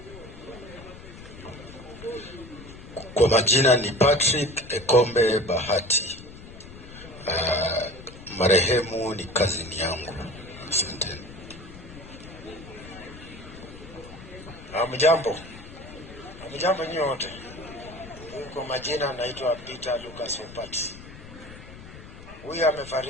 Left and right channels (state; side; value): noise; left; rumble, 16 dB below the sound